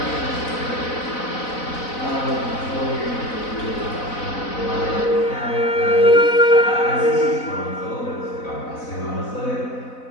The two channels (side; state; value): right; late; 4.0 ms